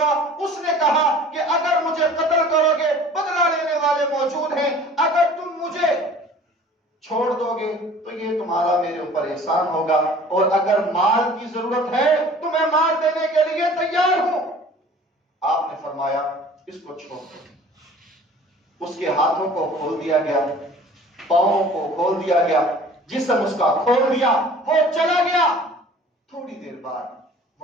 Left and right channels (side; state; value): both; normal; correlation 0.47